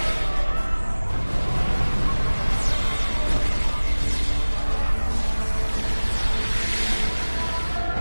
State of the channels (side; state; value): both; inverted; correlation -1.00